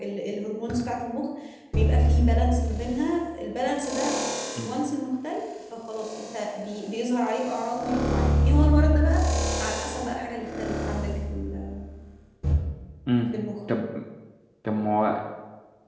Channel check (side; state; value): both; identical; correlation 1.00